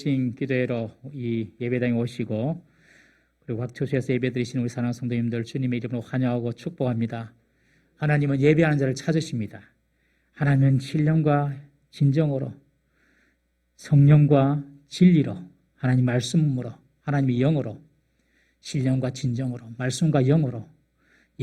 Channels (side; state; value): both; identical; correlation 1.00